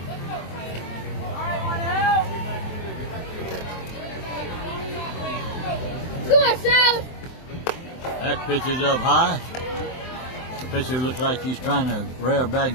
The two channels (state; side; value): late; right; 23 ms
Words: Come on, Sal! That pitch is up high. The pitcher looks like he's trying to rear back